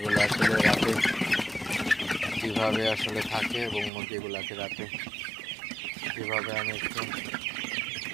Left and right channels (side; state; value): left; drops out; at 3.9 s